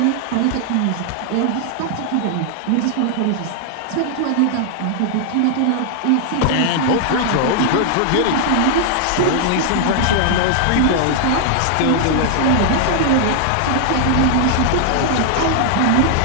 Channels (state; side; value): different; both; correlation 0.00